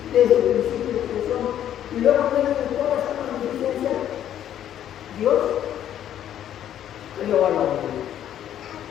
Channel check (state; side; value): quieter; right; 10.8 dB